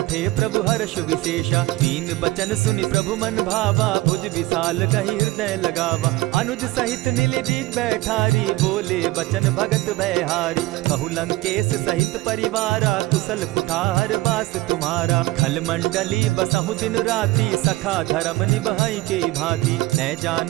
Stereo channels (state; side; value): quieter; left; 18.8 dB